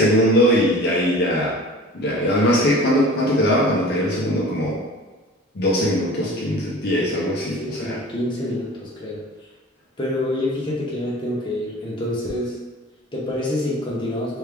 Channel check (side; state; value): both; normal; correlation 0.42